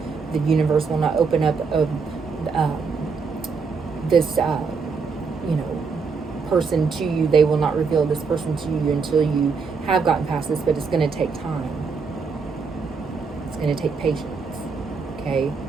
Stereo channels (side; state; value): left; quieter; 5.1 dB